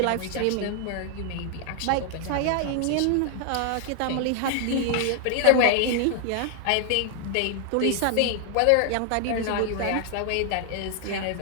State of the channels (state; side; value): different; both; correlation 0.00